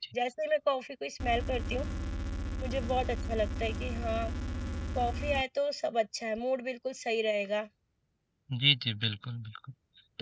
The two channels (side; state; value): both; identical; correlation 1.00